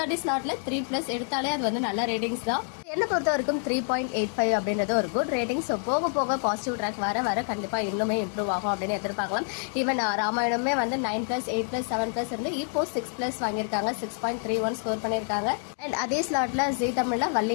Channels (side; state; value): right; silent; 55 dB below the other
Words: ஸ்லாட்ல 3+ எடுத்தாலே அது வந்து நல்ல ரேட்டிங்ஸ் தான். என்ன பொறுத்த வரைக்கும் 3.85 அப்படின்றது ஒரு குட் ரேட்டிங். ஸோ போக போக பாசிட்டிவ் ட்ராக் வர வர கண்டிப்பாக இன்னுமே இம்ப்ரூவ் ஆகும் அப்படின்னு எதிர்பார்க்கலாம். ஈவன் ராமாயணமே வந்து 9+, 8+, 7+ இருந்து இப்போ 6+ வாங்கியிருக்காங்க. 6.31 ஸ்கோர் பண்ணியிருக்காங்க. அண்ட் அதே ஸ்லாட்ல ஜி தமிழ்ல